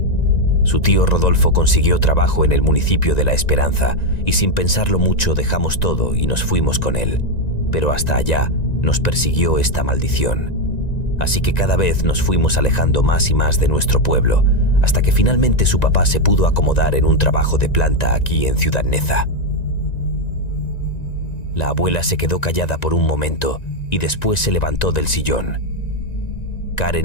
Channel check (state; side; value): late; right; 1.9 ms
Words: Su tío Rodolfo consiguió trabajo en el municipio de La Esperanza y sin pensarlo mucho dejamos todo y nos fuimos con él. Pero hasta allá nos persiguió esta maldición. Así que cada vez nos fuimos alejando más y más de nuestro pueblo, hasta que finalmente su papá se pudo acomodar en un trabajo de planta aquí en Ciudad Neza. La abuela se quedó callada por un momento y después se levantó del sillón.